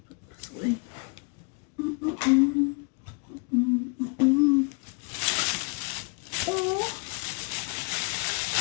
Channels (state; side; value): quieter; right; 32.8 dB